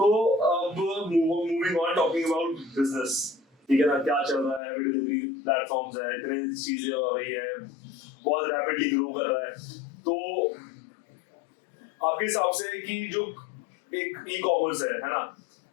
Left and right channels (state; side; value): drops out; right; at 4.6 s